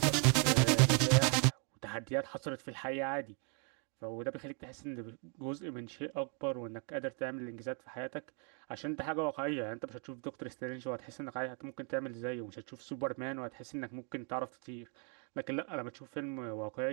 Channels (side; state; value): left; quieter; 35.9 dB